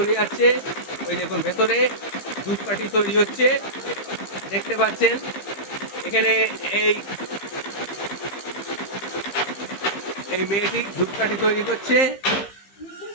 যাচ্ছে। ওই দেখুন ভেতরে ধূপকাঠি তৈরি হচ্ছে, দেখতে পাচ্ছেন। এখানে এই এই মেয়েটি ধূপকাঠি তৈরি করছে,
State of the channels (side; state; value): right; late; 15 ms